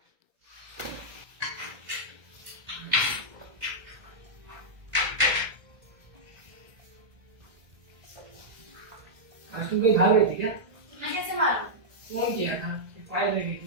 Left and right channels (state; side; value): late; left; 1.7 ms